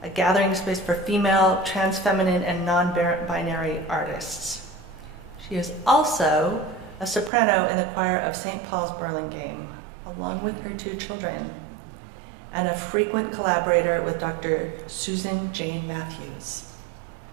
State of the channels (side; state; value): left; drops out; at 7.3 s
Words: a gathering space for female, trans-feminine, and non-binary artists. She is also a soprano in the choir of St. Paul's Burlingame, along with her two children, and a frequent collaborator with Dr. Susan Jane Matthews.